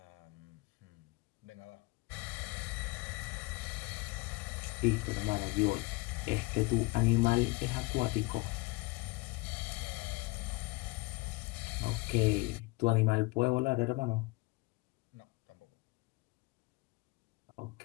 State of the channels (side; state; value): right; quieter; 24.6 dB